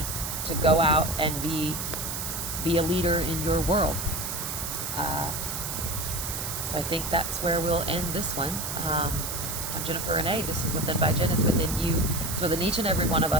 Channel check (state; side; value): noise; right; hiss, 4 dB below the sound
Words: to go out and be a leader in your world. So I think that's where we'll end this one. I'm Jennifer Renee. This is Within by Jen. It's within you. It's within each and every one of